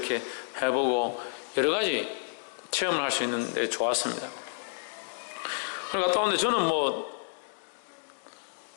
해보고 여러 가지 체험을 할 수 있는데 좋았습니다. 그걸 갔다 오는데 저는 뭐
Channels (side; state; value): right; silent; digital silence